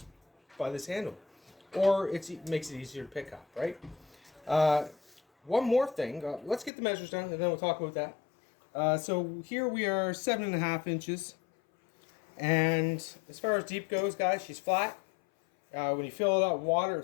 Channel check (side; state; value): right; drops out; at 6.7 s